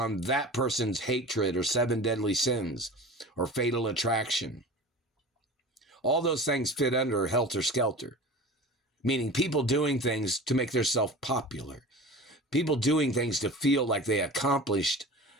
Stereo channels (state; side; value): normal; both; correlation 0.36